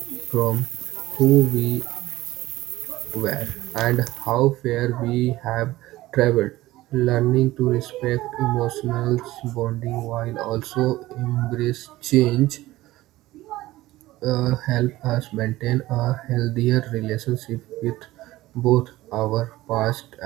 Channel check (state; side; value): quieter; left; 17.1 dB